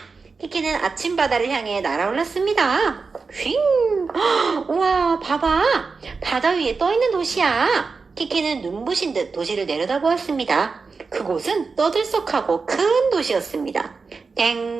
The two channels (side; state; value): left; quieter; 4.6 dB